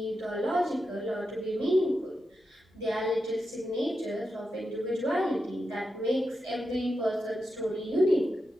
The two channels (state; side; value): normal; both; correlation 0.88